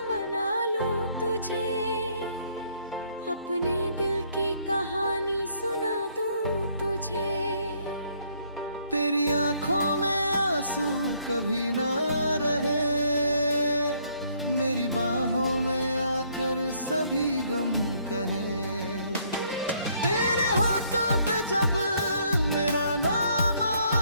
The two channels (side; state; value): both; inverted; correlation -0.67